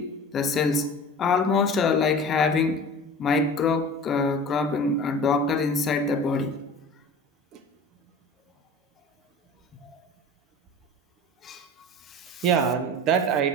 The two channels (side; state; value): both; normal; correlation 0.38